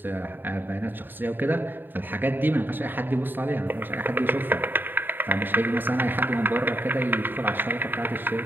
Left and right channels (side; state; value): left; late; 0.093 ms